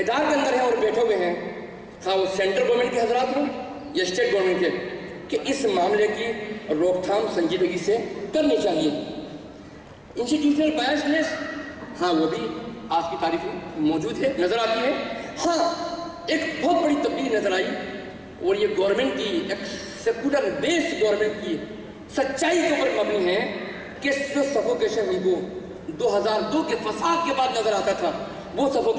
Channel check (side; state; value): both; identical; correlation 1.00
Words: کے اندر ہیں اور بیٹھے ہوئے ہیں، خواہ وہ سینٹرل گورنمنٹ کے حضرات ہوں یا اسٹیٹ گورنمنٹ کے، کہ اس معاملے کی روک تھام سنجیدگی سے کرنی چاہیے۔ انسٹیٹیوشنل بائسنس، ہاں وہ بھی آج کی تاریخ میں موجود ہے، نظر آتی ہے۔ ہاں ایک بہت بڑی تبدیلی نظر آئی، اور یہ گورنمنٹ کی ایک سیکولر بیس گورنمنٹ کی سچائی کے اوپر مبنی ہے کہ جو سفوکیشن ہم کو 2002 کے فساد کے بعد نظر آتا تھا، وہ